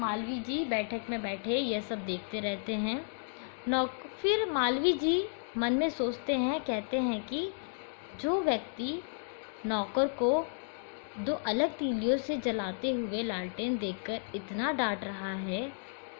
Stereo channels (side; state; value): right; silent; digital silence